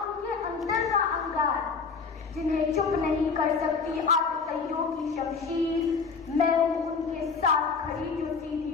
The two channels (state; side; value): quieter; right; 5.1 dB